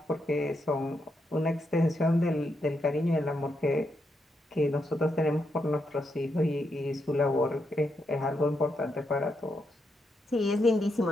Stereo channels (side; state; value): both; normal; correlation 0.82